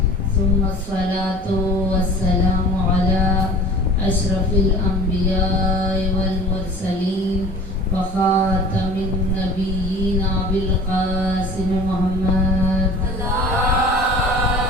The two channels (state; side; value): normal; both; correlation 0.43